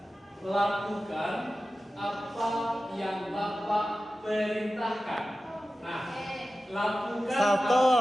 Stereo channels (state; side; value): normal; both; correlation 0.94